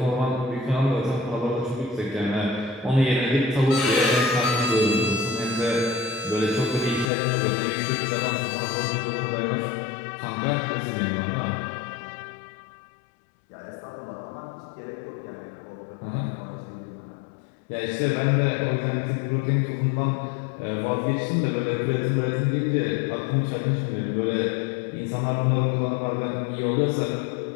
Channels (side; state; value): right; drops out; at 7.1 s